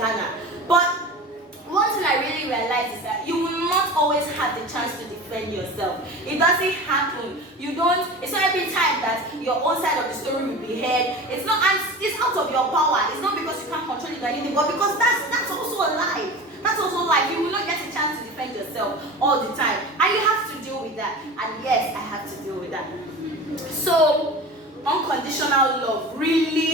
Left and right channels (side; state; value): both; normal; correlation 0.33